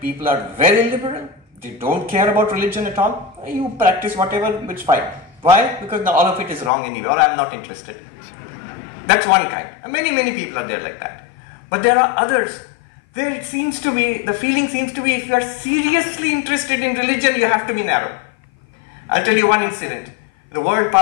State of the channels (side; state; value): right; drops out; at 6.7 s